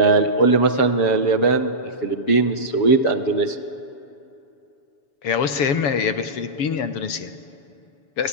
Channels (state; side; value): late; right; 7.1 ms